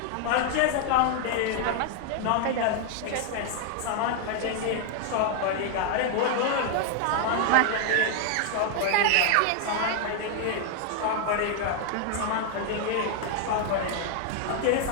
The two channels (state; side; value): different; both; correlation 0.00